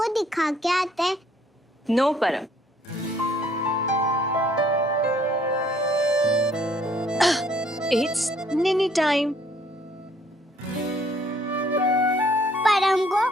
दिखा के आते। नो परम, इट्स निनी टाइम। परम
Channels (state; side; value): normal; both; correlation 0.62